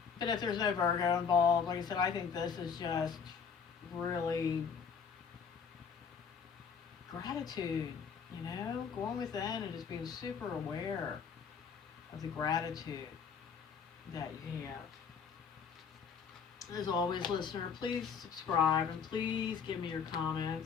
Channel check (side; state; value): right; quieter; 6.4 dB